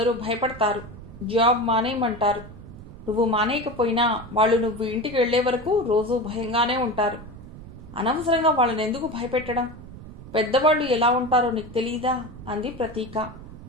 భయపడతారు, జాబ్ మానేయమంటారు. నువ్వు మానేయకపోయినా వాళ్ళు నువ్వు ఇంటికి వెళ్లే వరకు రోజూ భయంగానే ఉంటారు. అనవసరంగా వాళ్ళని ఎందుకు భయపెట్టడం? పెద్దవాళ్ళు ఎలా ఉంటారో నీకు తెలీదా అంది ప్రతీక.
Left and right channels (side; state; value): right; noise; rumble, 15 dB below the sound